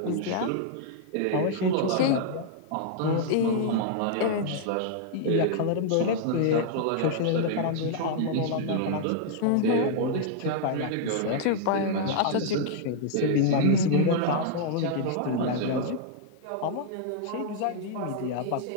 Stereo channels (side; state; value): both; different; correlation -0.01